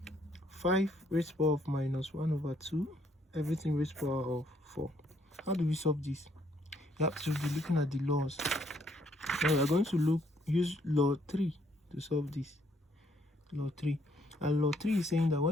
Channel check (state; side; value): normal; both; correlation 0.69